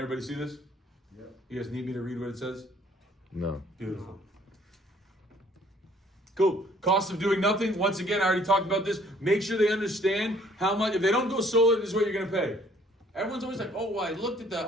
everybody see this? Yep. You guys need me to read what it says? No. Beautiful. Cool. Cost of doing nothing. Once again, I already talked about this. Make sure they understand how much. If they don't go solar, this is what you're going to pay. Everyone's always like, oh, well, I looked at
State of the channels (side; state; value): both; normal; correlation 0.60